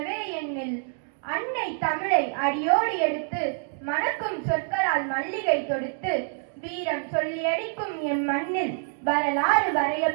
எண்ணில் அன்னை தமிழை அடியோடு எடுத்து மணக்கும் சொற்களால் மல்லிகை தொடுத்து வீரம் சொல்லியடிக்கும் எம் மண்ணில் வரலாறு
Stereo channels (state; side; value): silent; left; digital silence